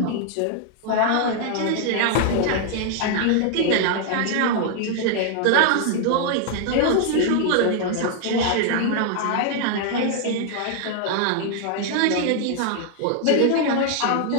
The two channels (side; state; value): both; different; correlation 0.00